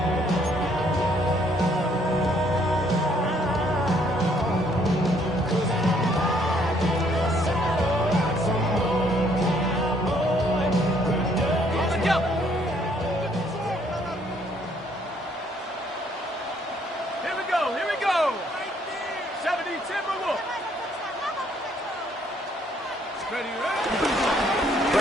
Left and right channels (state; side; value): normal; both; correlation 0.66